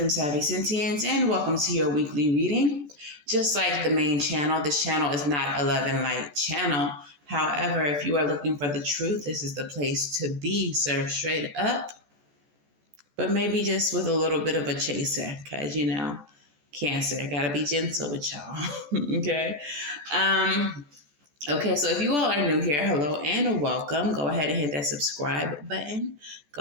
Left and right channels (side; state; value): left; late; 14 ms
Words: Savy and welcome to your weekly reading. Just like the main channel, this channel is not a love and light channel. However, if you are looking for the truth, this is the place to be, served straight up, but maybe just with a little bit of a chaser, because, Cancer, gotta be gentle with y'all, okay? Okay, so if you all are new here, hello and welcome. Go ahead and hit that subscribe button.